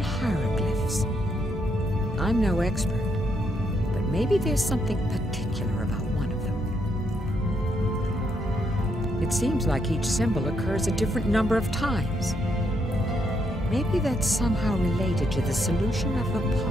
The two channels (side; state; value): both; normal; correlation 0.77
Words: hieroglyphs. I'm no expert, but maybe there's something particular about one of them. It seems like each symbol occurs a different number of times. Maybe that's somehow related to the solution of the